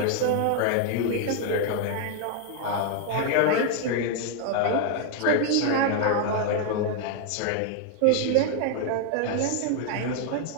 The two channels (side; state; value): both; different; correlation 0.00